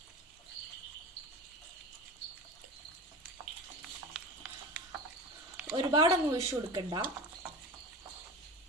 ഒരുപാടൊന്നും ഒഴിച്ചു കൊടുക്കണ്ട.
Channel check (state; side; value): normal; both; correlation 0.30